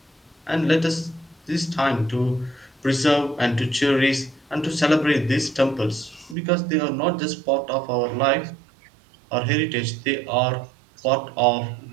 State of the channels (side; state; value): left; drops out; at 6.4 s